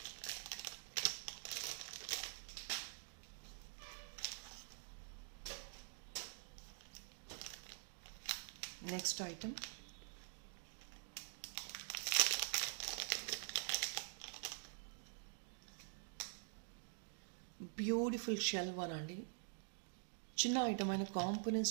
Next item. Beautiful shell one అండి. చిన్న ఐటమ్ అయిన కాంపోనెంట్స్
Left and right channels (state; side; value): silent; left; digital silence